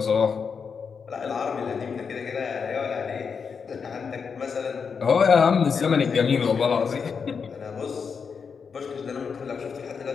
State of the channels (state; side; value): quieter; right; 6.0 dB